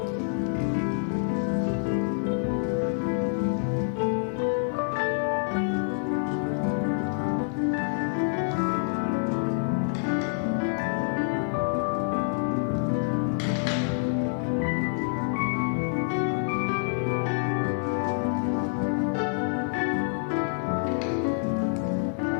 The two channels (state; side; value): silent; right; 60 dB below the other